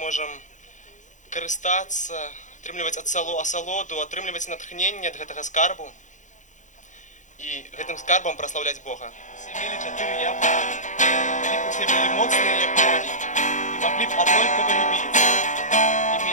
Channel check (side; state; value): right; late; 0.36 ms